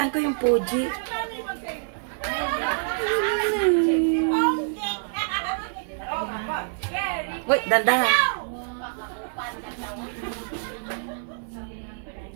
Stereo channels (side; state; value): left; silent; digital silence